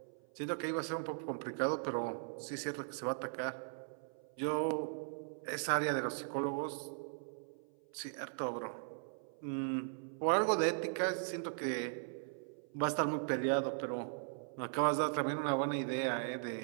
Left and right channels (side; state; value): left; silent; 52 dB below the other